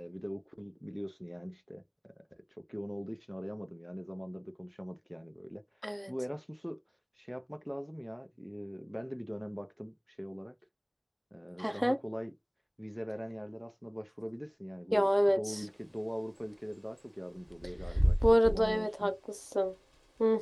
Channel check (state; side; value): identical; both; correlation 1.00